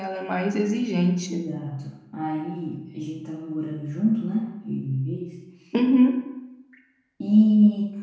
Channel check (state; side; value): identical; both; correlation 1.00